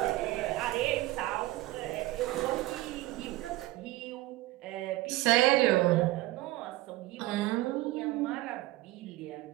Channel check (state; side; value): quieter; left; 18.3 dB